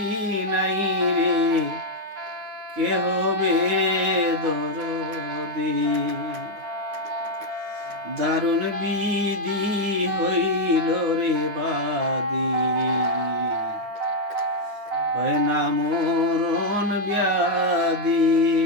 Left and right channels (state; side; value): late; left; 9.7 ms